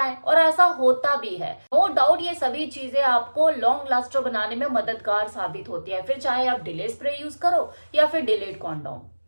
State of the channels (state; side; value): inverted; both; correlation -1.00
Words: और ऐसा होता भी है। नो डाउट ये सभी चीजें आपको लॉन्ग लास्टर बनाने में मददगार साबित होती है, फिर चाहे आप डिले स्प्रे यूज करो या फिर डिलेड कॉन्डोम।